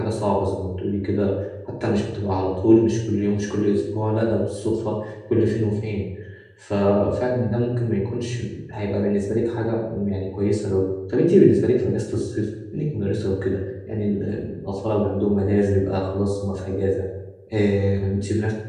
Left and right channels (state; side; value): identical; both; correlation 1.00